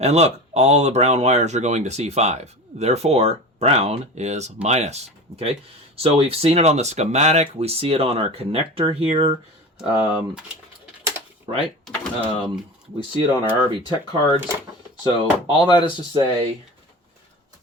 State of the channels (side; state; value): both; normal; correlation 0.32